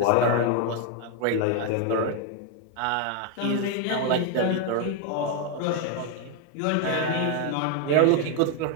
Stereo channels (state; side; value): different; both; correlation 0.01